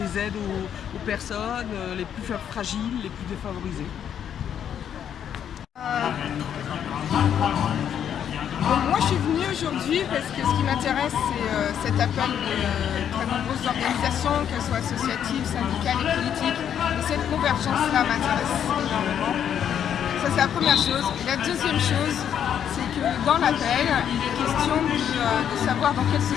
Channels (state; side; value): quieter; right; 9.1 dB